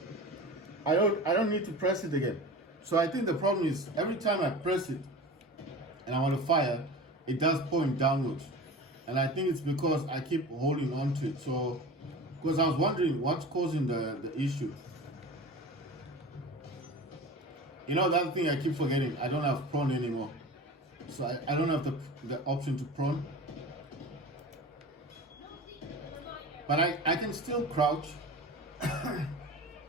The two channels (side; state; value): both; normal; correlation 0.34